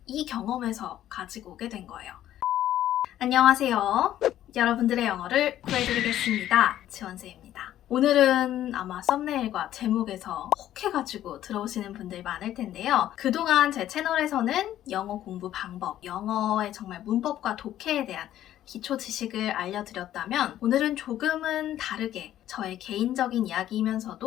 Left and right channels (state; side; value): quieter; right; 12.4 dB